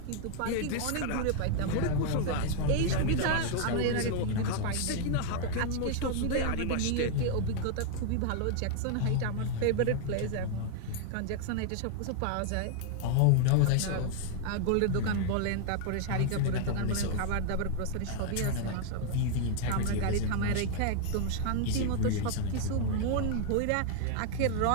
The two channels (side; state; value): both; different; correlation 0.00